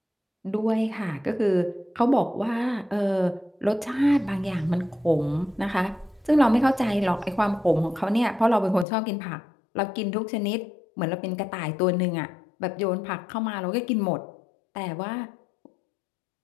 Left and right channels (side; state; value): right; drops out; at 8.8 s